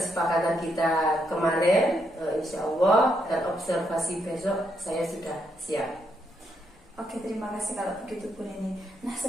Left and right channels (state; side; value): normal; both; correlation 0.78